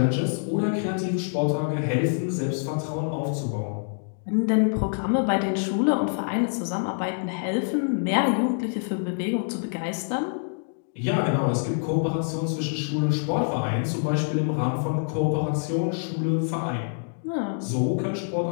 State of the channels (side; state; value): right; silent; digital silence